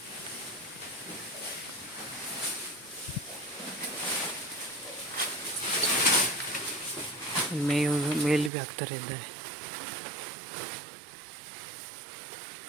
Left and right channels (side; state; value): left; drops out; at 8.5 s